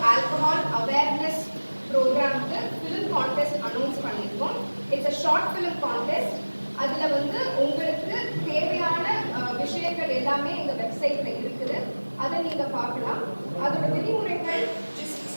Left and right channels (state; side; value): inverted; both; correlation -1.00